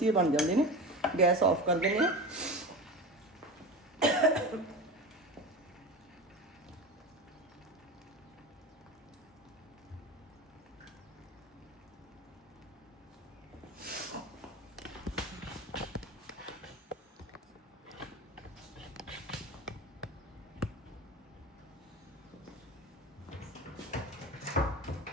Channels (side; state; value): both; normal; correlation 0.29